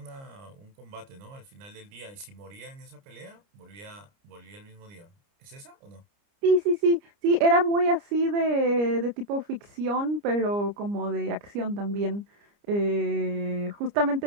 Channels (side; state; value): left; late; 29 ms